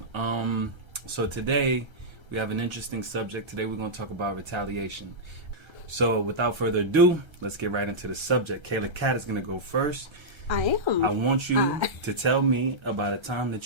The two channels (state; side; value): late; left; 1.3 ms